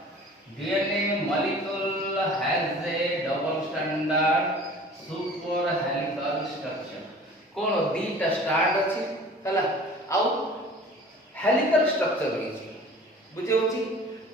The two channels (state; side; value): normal; both; correlation 0.45